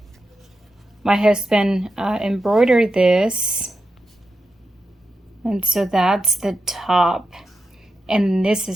My husband embroidered this, and so that's the top, and this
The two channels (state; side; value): normal; both; correlation 0.88